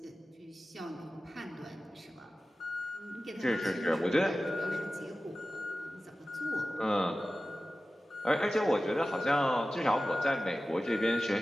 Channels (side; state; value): both; normal; correlation 0.95